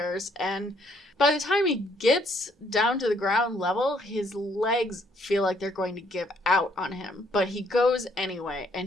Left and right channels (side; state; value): both; normal; correlation 0.68